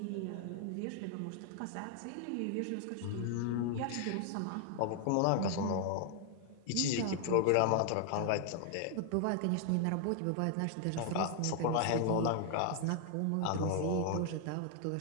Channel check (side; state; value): both; different; correlation 0.00